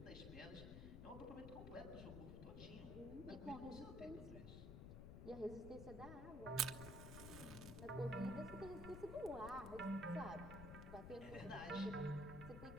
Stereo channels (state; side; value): noise; left; rumble, 7 dB below the sound